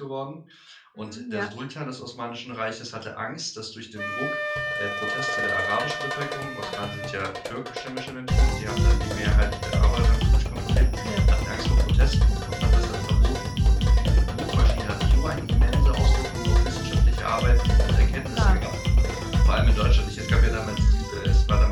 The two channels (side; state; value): both; identical; correlation 1.00